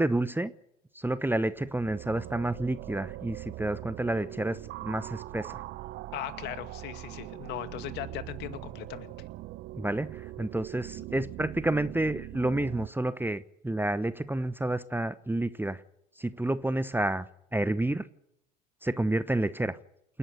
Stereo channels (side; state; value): both; normal; correlation 0.85